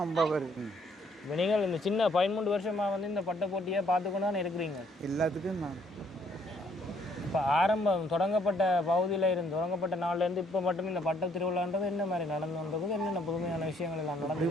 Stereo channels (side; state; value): both; normal; correlation 0.66